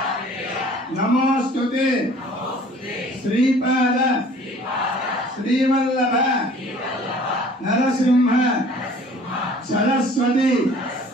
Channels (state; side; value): normal; both; correlation 0.51